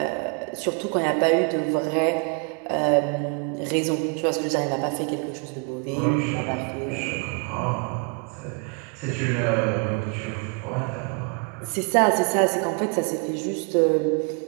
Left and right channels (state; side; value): quieter; left; 35.4 dB